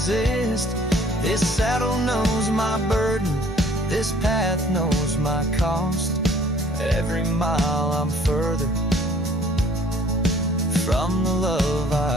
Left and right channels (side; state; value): both; normal; correlation 0.56